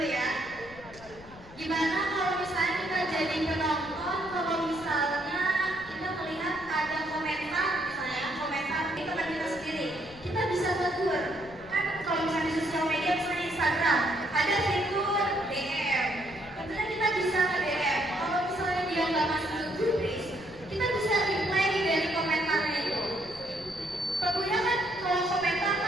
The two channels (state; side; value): noise; left; rumble, 20 dB below the sound